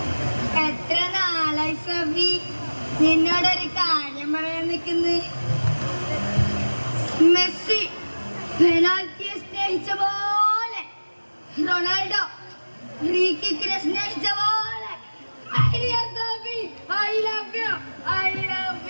എത്ര നാളായി സോഫി നിന്നോടൊരു കാര്യം പറയാൻ നിൽക്കുന്നു. മെസ്സി പെനാൽറ്റിയെ സ്നേഹിച്ച പോലെ റൊണാൾഡോ ഫ്രീ കിക്കിനെ സ്നേഹിച്ച പോലെ സോഫി ഐ ലവ് യു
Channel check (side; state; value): both; inverted; correlation -1.00